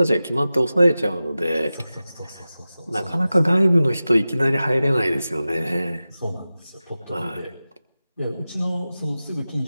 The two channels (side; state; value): both; inverted; correlation -0.95